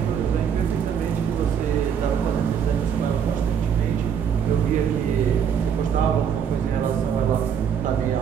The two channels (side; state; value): left; quieter; 7.8 dB